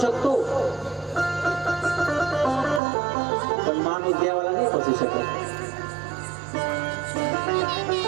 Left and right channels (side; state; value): left; drops out; at 2.8 s